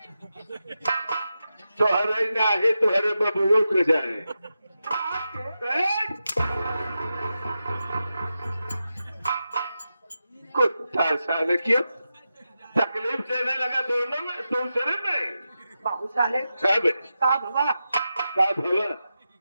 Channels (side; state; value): both; inverted; correlation -0.90